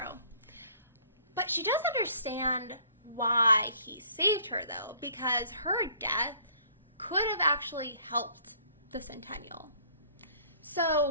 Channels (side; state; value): both; inverted; correlation -0.57